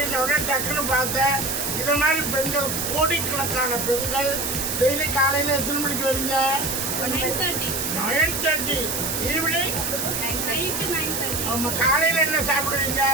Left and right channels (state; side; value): noise; right; hiss, 2 dB below the sound